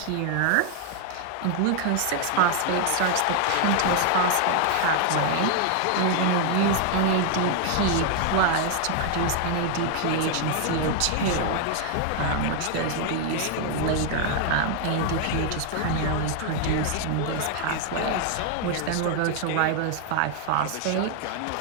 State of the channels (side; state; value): both; different; correlation 0.00